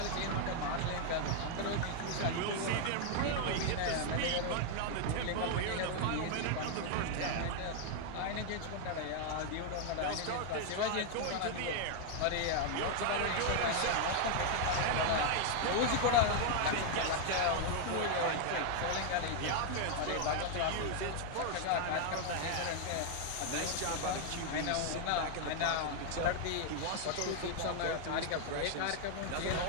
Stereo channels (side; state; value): both; different; correlation 0.00